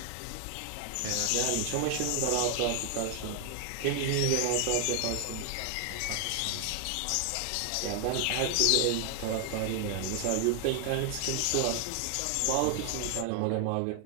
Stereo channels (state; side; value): different; both; correlation 0.00